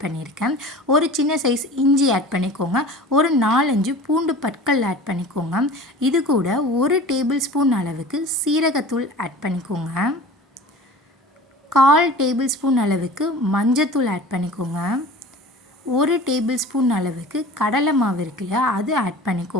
பண்ணியிருக்கேன். ஒரு சின்ன சைஸ் இஞ்சி ஆட் பண்ணிக்கோங்க. ஒரு 4-5 பூண்டு பற்கள் ஆட் பண்ணிக்கோங்க. இது கூட 1 டேபிள் ஸ்பூன் அளவுக்கு சீரகத்தூள் ஆட் பண்ணிக்கோங்க. 1/4 டேபிள் ஸ்பூன் அளவுக்கு மஞ்சத்தூள் ஆட் பண்ணிக்கோங்க. 1 டேபிள் ஸ்பூன் அளவுக்கு கடலை மாவு இருக்கு இல்லையா, அது ஆட்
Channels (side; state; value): both; normal; correlation 0.39